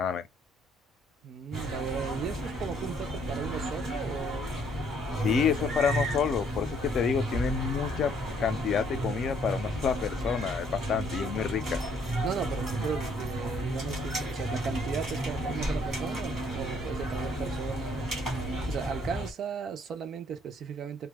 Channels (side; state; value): both; normal; correlation 0.65